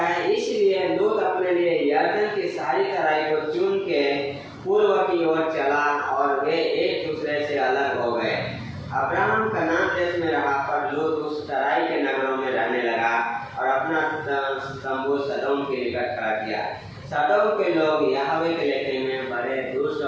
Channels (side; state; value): both; identical; correlation 1.00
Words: इसलिए लूत अपने लिए यरदन की सारी तराई को चुन के पूर्व की ओर चला, और वे एक दूसरे से अलग हो गए। अब्राहम कनान देश में रहा, पर लूत उस तराई के नगरों में रहने लगा और अपना तंबू सदोम के निकट खड़ा किया। सदोम के लोग यहोवा के लेखे में बड़े दुष्ट